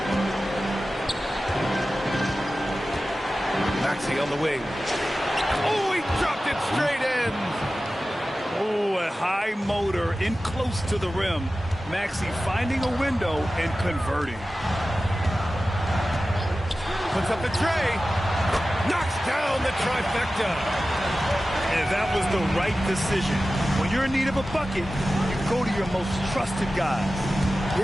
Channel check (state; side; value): normal; both; correlation 0.95